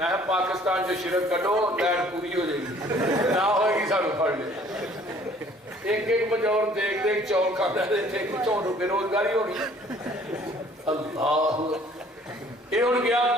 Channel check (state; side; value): normal; both; correlation 0.56